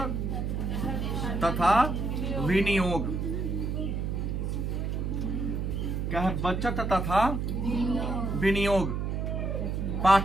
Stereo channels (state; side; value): noise; right; hum, 1 dB below the sound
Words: तथा विनियोग। क्या है? बचत तथा विनियोग